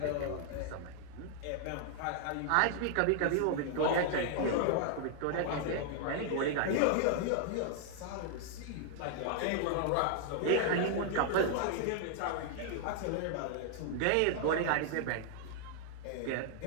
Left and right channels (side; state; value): both; different; correlation -0.01